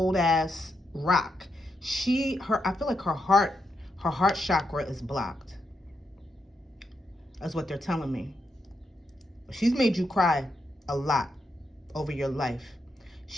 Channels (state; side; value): normal; both; correlation 0.82